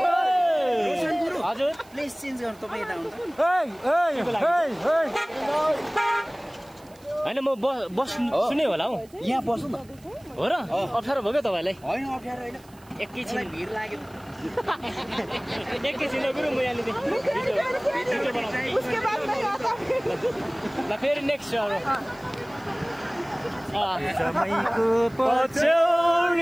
हजुर प्लेस चेन्ज गर्नु तपाईँ यता आउनु होइन म बस सुने होला हौ यहाँ बस्नु न हो र अप्ठ्यारो भयो क्या तपाईँलाई होइन अप्ठ्यारो होइन एकैछिन भिड लाग्यो एकैछिन गुरु म यहाँनिर ल फेरि नेक्स्ट अरू समयको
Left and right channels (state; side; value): noise; right; hiss, 27 dB below the sound